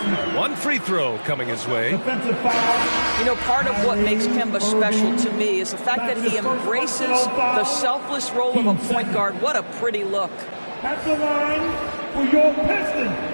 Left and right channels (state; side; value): inverted; both; correlation -1.00